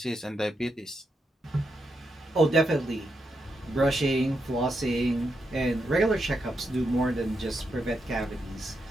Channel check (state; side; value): normal; both; correlation 0.83